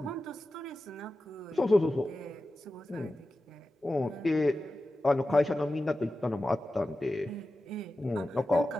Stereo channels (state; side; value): normal; both; correlation 0.93